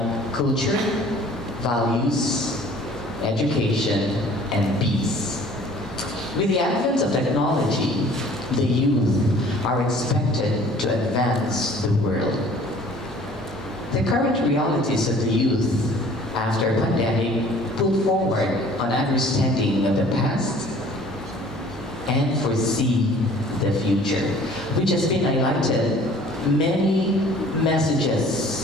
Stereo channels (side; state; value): both; normal; correlation 0.51